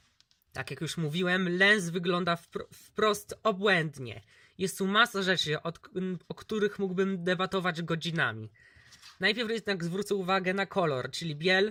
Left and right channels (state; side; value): identical; both; correlation 1.00